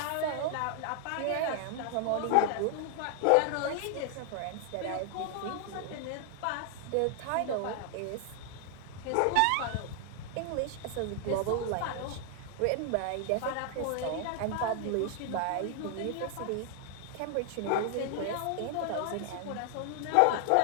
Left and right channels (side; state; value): both; different; correlation 0.00